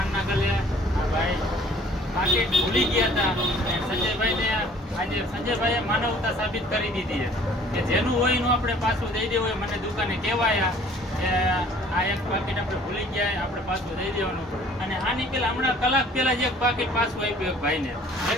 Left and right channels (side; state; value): both; normal; correlation 0.54